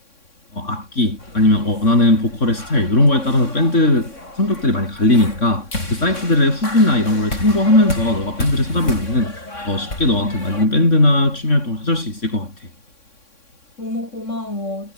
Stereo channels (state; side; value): late; right; 3.6 ms